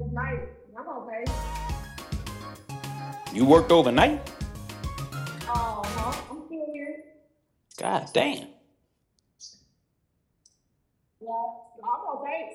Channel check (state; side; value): identical; both; correlation 1.00